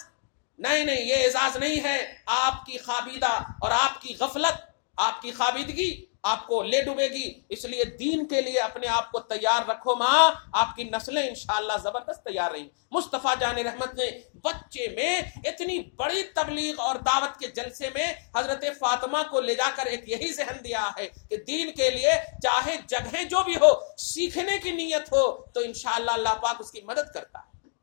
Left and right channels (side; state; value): right; silent; digital silence